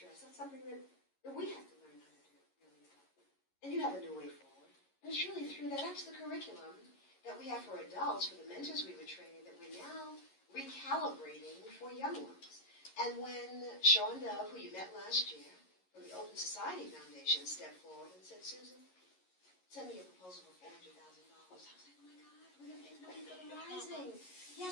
That's something that we have to learn how to do really well. And you have a new way forward. And it's really through that. That's the curriculum that we have for adults, for the mentors we were training, that we're now recalibrating for young ones. And when Sean Dove, who you met last year, from the Open Society Foundation, stepped forward and said, Susan, send me a proposal for $400,000. I was like, oh my God, we're going to make money for the Rising.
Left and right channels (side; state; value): right; late; 11 ms